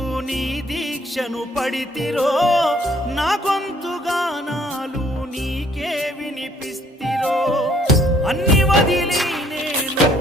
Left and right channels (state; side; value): normal; both; correlation 0.62